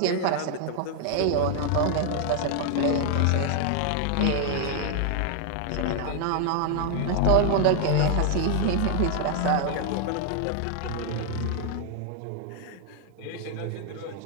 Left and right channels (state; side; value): different; both; correlation 0.00